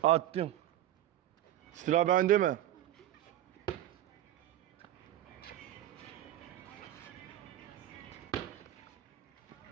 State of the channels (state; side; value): quieter; left; 12.8 dB